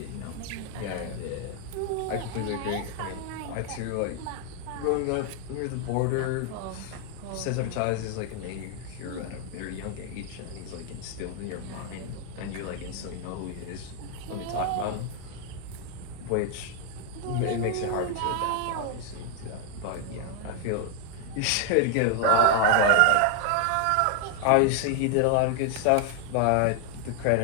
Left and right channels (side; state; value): both; different; correlation 0.00